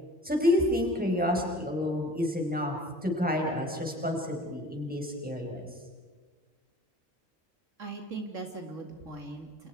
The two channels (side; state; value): both; normal; correlation 0.46